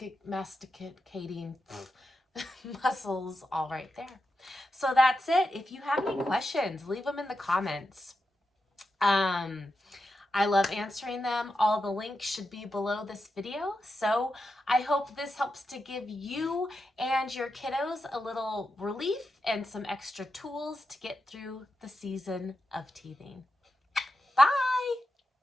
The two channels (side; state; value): both; normal; correlation 0.88